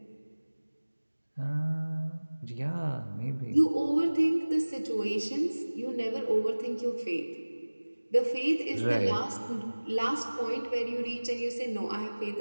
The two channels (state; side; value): inverted; both; correlation -1.00